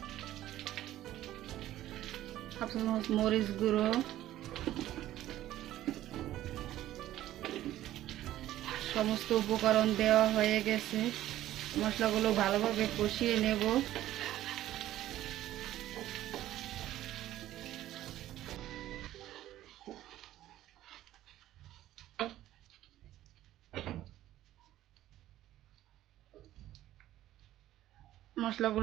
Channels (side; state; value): left; quieter; 13.8 dB